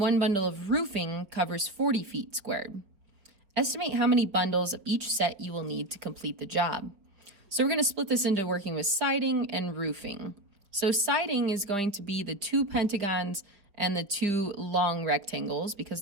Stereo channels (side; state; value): left; late; 4.9 ms